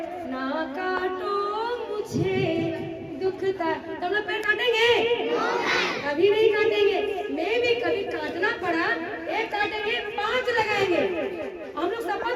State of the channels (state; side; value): identical; both; correlation 1.00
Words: ना काटो मुझे दुखता। तो हम लोग पेड़ काटेंगे? कभी नहीं काटेंगे। मैं भी कभी काटना पड़ा, एक काटेंगे 5 लगाएंगे। हम लोग